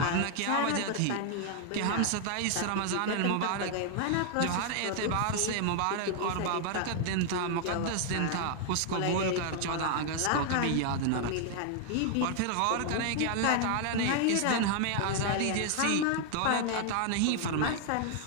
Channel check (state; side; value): different; both; correlation 0.00